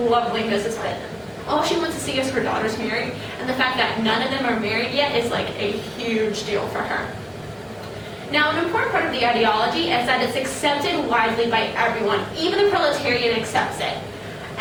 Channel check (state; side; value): identical; both; correlation 1.00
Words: Mrs. Bennet. All she wants to see is her daughters married, and the fact that none of them are married yet is like a huge deal for her. Now, an important part of the ideology is that it's accepted widely by everyone. Even the proletariat accepts it.